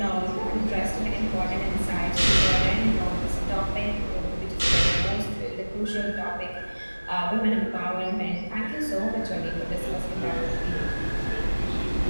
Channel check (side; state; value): both; inverted; correlation -1.00